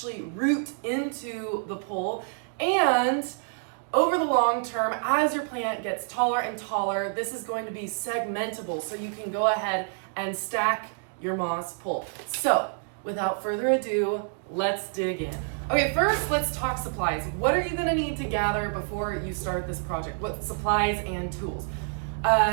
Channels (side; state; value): left; silent; 60 dB below the other